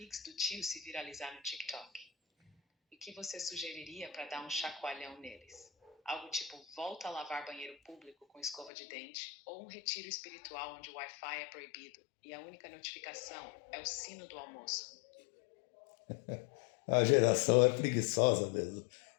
do tio se viralizar no TikTok. E o que você sugeriria para dar um chacoalhão neles? Algo tipo volta a lavar banheiro público com escova de dente ou um retiro espiritual onde o Wi-Fi é proibido e a única notificação é o sino do almoço. A geração é preguiçosa mesmo.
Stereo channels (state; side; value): drops out; right; at 8.7 s